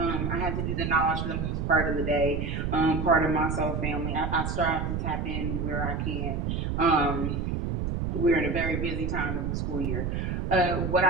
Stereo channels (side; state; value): right; noise; rumble, 1 dB below the sound